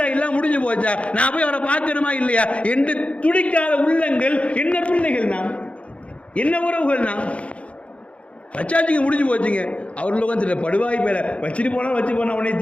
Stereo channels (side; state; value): right; late; 0.062 ms